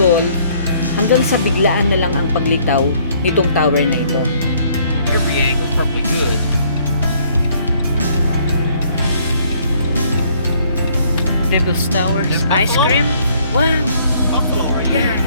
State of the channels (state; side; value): inverted; both; correlation -0.63